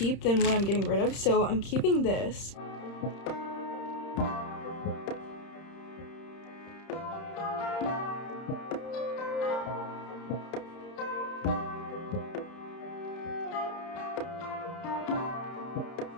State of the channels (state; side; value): late; right; 31 ms